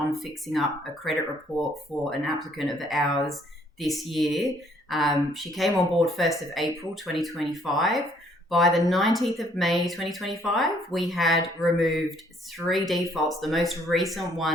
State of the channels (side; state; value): both; normal; correlation 0.64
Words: fixing up a credit report for an applicant of ours this year. She came on board 1st of April 2025. By the 19th of May 2025, we had removed 3 defaults, the most recent